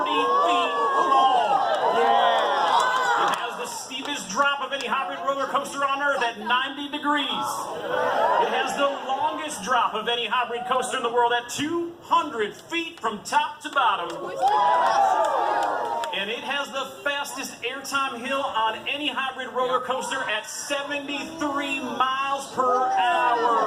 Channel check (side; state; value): both; identical; correlation 1.00